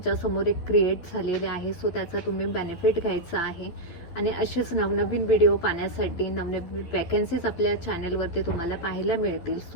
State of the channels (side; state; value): right; late; 12 ms